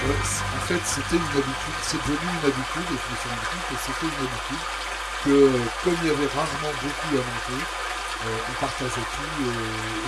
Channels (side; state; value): both; identical; correlation 1.00